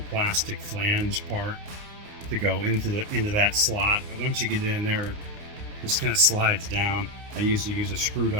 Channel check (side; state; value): left; late; 29 ms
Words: plastic flange part to go into that slot, but once you get in there, it just kind of slides down. I usually use a